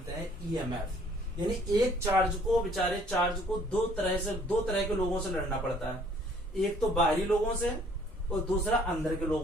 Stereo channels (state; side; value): normal; both; correlation 0.59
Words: हैं ईएमएफ। यानी एक चार्ज को, बेचारे चार्ज को दो तरह के लोगों से लड़ना पड़ता है, एक तो बाहरी लोगों से और दूसरा अंदर के